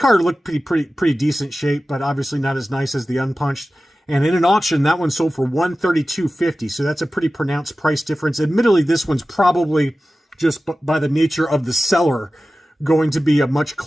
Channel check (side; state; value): both; normal; correlation 0.95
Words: looked pretty decent shape, but obviously not as nice as the unpunched. And in an auction, that one sold for $132.50. So that's a pretty pronounced price difference. Admittedly, this one's probably just by the nature of the seller going to be a much